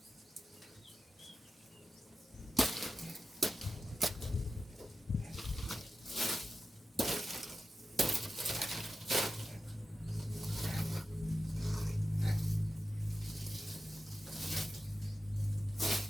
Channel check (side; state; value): both; normal; correlation 0.92